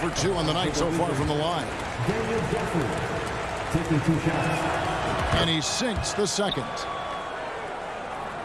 2 on the night so far from the line. Daniel Gafford taking 2 shots. And he sinks the second.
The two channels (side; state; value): both; identical; correlation 1.00